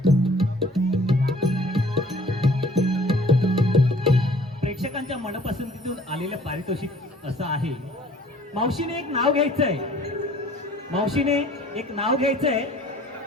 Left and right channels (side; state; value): both; normal; correlation 0.54